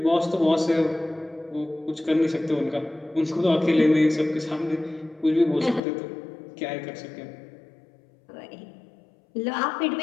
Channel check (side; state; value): right; drops out; at 5.8 s